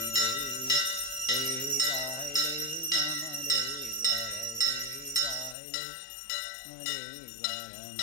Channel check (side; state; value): right; drops out; at 5.6 s